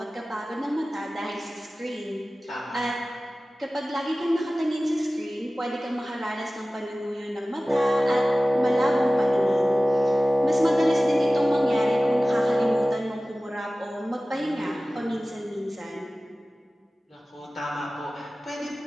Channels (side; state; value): both; normal; correlation 0.97